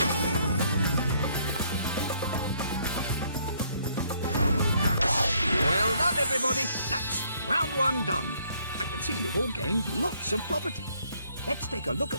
Everybody, that's round 1 done. I can see you've all gained lots of property. Let's take a look at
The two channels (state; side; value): inverted; both; correlation -0.67